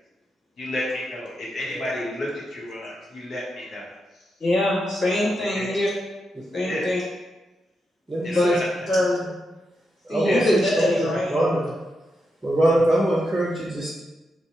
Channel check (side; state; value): both; normal; correlation 0.85